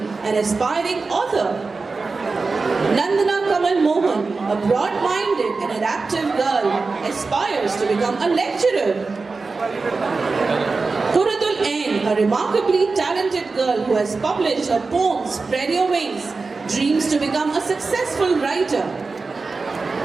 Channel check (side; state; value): left; quieter; 4.1 dB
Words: an aspiring author. Nandana Kamal Mohan, a broad-minded and adaptive girl, aspires to become a lecturer. Quratul Ain, a remarkably talented girl who has published her poem Spread Your Wings, dreams to become a successful writer.